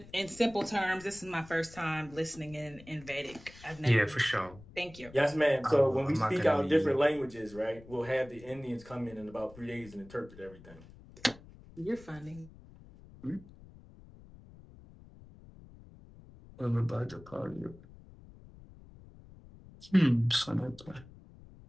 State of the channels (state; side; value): noise; left; rumble, 20 dB below the sound